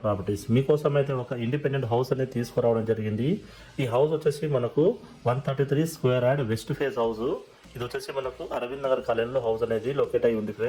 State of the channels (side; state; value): both; identical; correlation 1.00